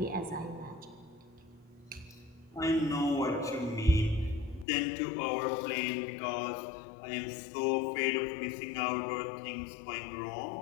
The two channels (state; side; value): drops out; right; at 4.7 s